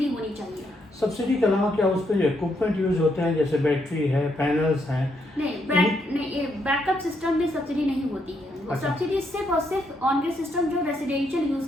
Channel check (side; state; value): both; normal; correlation 0.77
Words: होनी चाहिए। सब्सिडी के अलावा क्या उस पर जो इक्विपमेंट यूज होते हैं, जैसे बैटरी है, पैनल्स हैं? नहीं, बैकअप सिस्टम में सब्सिडी नहीं होती है। अच्छा। सब्सिडी सिर्फ और सिर्फ ऑन ग्रिड सिस्टम जो रेसिडेंशियल यूज